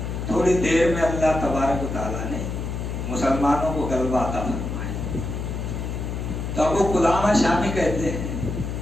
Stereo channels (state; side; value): noise; left; hum, 4 dB below the sound